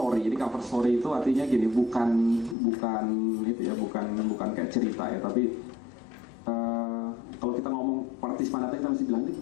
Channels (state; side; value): drops out; right; at 2.6 s